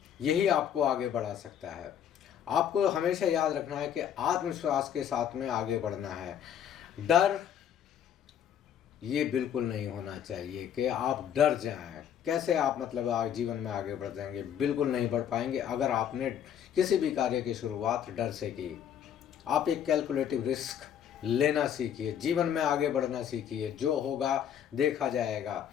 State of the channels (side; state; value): right; quieter; 9.3 dB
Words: यही आपको आगे बढ़ा सकता है। आपको हमेशा याद रखना है कि आत्मविश्वास के साथ में आगे बढ़ना है। डर ये बिल्कुल नहीं होना चाहिए कि आप डर जाएं। कैसे आप मतलब जीवन में आगे बढ़ जाएंगे? बिल्कुल नहीं बढ़ पाएंगे अगर आपने किसी भी कार्य की शुरुआत डर से की। आप एक कैलकुलेटिव रिस्क लेना सीखिए, जीवन में आगे बढ़ना सीखिए। जो होगा देखा जाएगा।